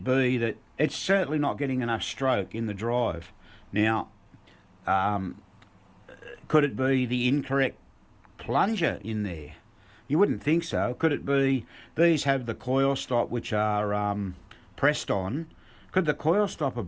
be that it's certainly not getting enough stroke in the drive? Now, could it be the incorrect plunger in there? You wouldn't think so. Could it be these have the coil stop which are pressed on? Could the coil stop have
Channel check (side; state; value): both; identical; correlation 1.00